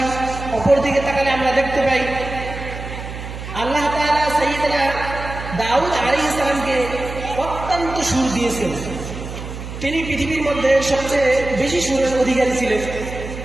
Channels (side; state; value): right; noise; hum, 9 dB below the sound